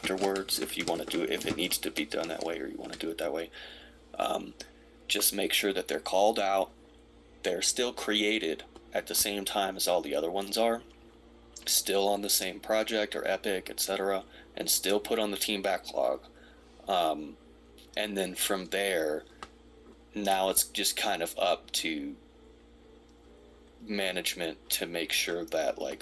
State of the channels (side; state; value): both; identical; correlation 1.00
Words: if you want to do it, if it needs to be done that way or you want to do it that way, just make sure that they're called out, they're still created at the same time as all the other ones are, still on the same project or epic, etc., and still put on the team backlog. And then from there, now it's just kind of up to management to make sure that